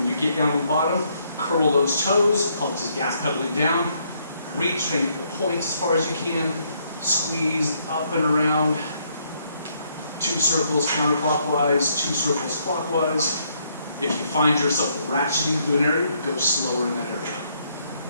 you get down to the bottom, curl those toes. Call it just gas pedaling down. Reach, try and get the points as far as you can. Squeeze up and around. 2 circles counterclockwise, 2 circles clockwise. If you find yourself ratcheting through an area, go slower in that area.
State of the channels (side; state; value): both; inverted; correlation -0.71